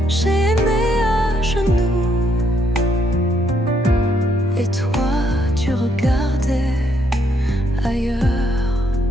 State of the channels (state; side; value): normal; both; correlation 0.73